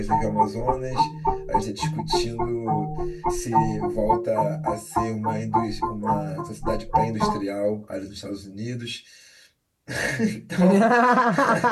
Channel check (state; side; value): identical; both; correlation 1.00